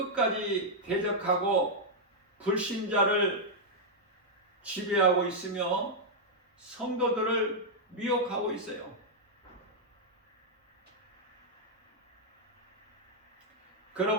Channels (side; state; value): both; normal; correlation -0.05